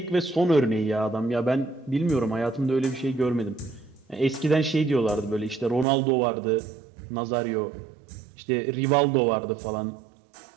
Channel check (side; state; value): left; drops out; at 5.9 s